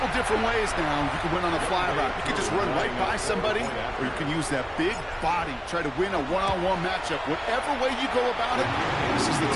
different ways now. You can win on a fly route. You can just run right by somebody, or you can use that big body, try to win a one-on-one matchup. Whatever way you go about it, this is the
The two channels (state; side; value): identical; both; correlation 1.00